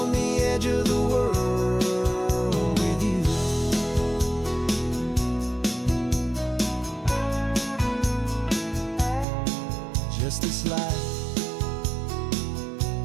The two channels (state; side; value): drops out; left; at 9.2 s